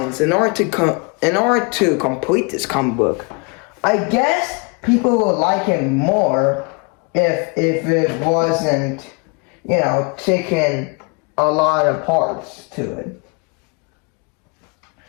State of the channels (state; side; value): quieter; right; 32.6 dB